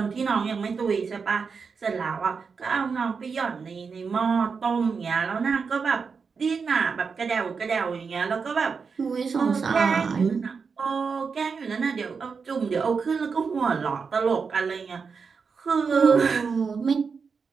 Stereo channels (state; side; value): quieter; left; 5.4 dB